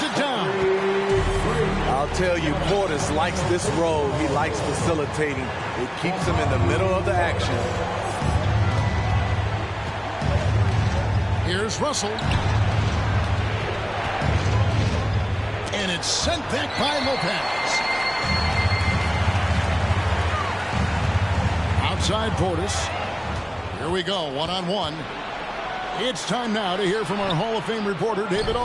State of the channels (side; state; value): both; identical; correlation 1.00